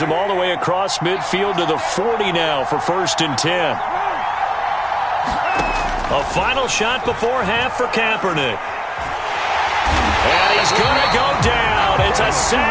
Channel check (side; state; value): both; identical; correlation 1.00